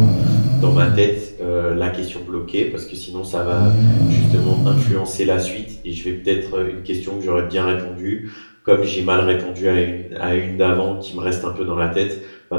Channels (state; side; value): inverted; both; correlation -1.00